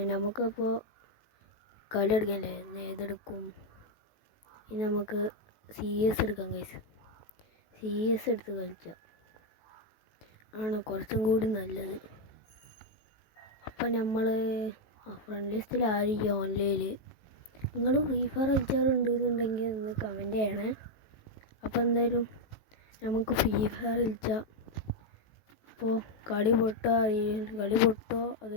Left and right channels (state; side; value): late; right; 18 ms